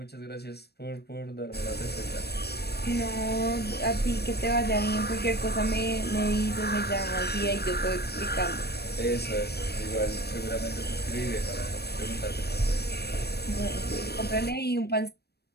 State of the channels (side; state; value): right; late; 0.47 ms